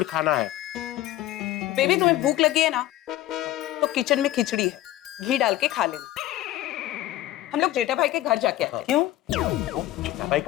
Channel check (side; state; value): right; quieter; 14.5 dB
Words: खाना है। बेबी तुम्हें भूख लगी है ना, तो किचन में खिचड़ी है, घी डाल के खा लेना। हम लोग जेठा भाई के घर जाके आते हैं। क्यों? जेठा भाई